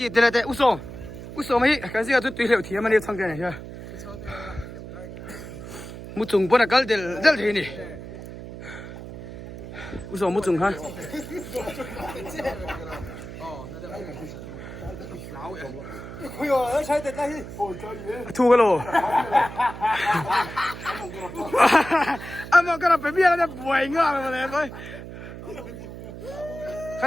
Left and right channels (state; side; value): noise; right; hum, 11 dB below the sound